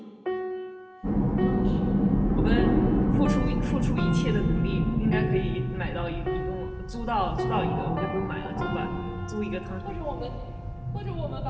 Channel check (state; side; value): identical; both; correlation 1.00